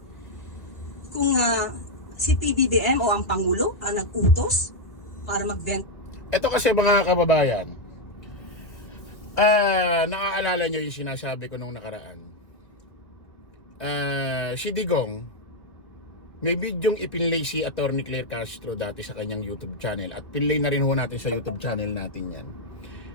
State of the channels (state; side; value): late; right; 1.8 ms